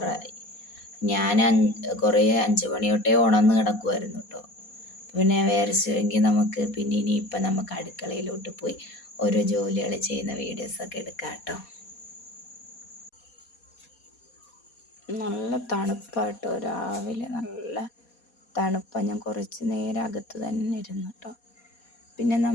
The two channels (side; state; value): right; late; 4.2 ms